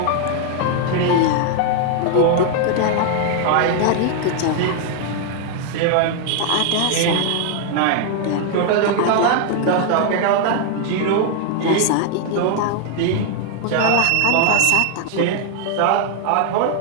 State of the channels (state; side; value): different; both; correlation 0.00